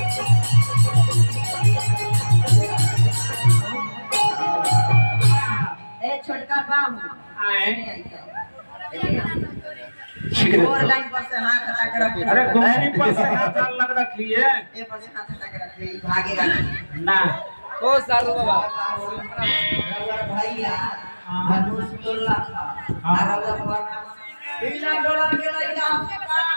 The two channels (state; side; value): inverted; both; correlation -1.00